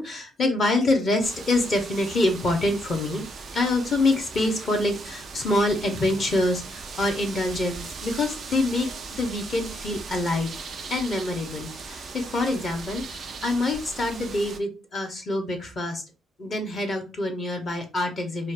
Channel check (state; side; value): normal; both; correlation 0.76